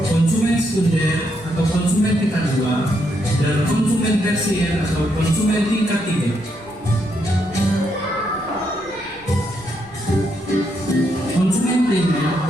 konsumen sekunder atau konsumen tingkat 2, dan konsumen tersier atau konsumen tingkat 3. Konsumen primer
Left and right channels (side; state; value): left; noise; rumble, 24 dB below the sound